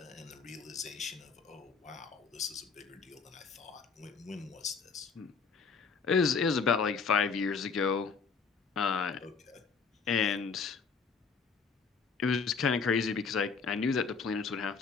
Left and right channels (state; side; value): quieter; right; 5.3 dB